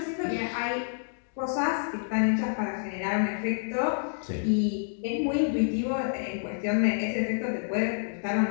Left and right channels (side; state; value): right; silent; digital silence